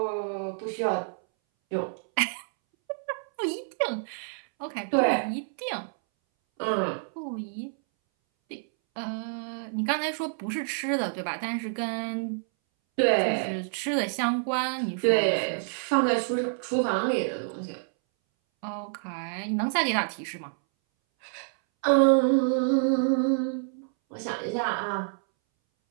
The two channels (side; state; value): left; silent; 59 dB below the other